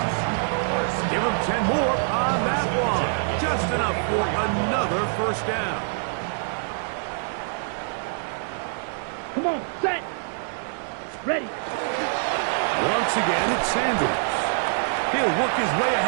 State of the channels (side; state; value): left; silent; 62 dB below the other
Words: Give him 10 more on that one. Just enough for another 1st down. Come on, set. Ready. Once again, it's Sanders. He'll work his way